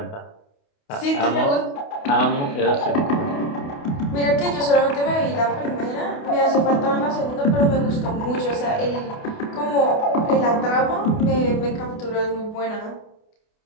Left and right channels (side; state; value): right; late; 28 ms